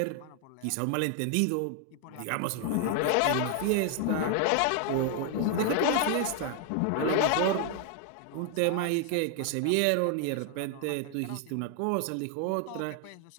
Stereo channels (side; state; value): both; different; correlation 0.00